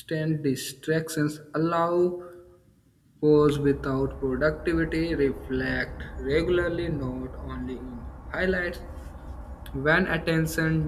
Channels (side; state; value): both; identical; correlation 1.00